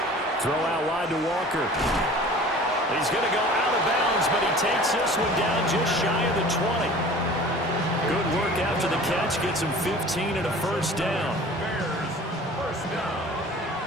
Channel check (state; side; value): normal; both; correlation 0.44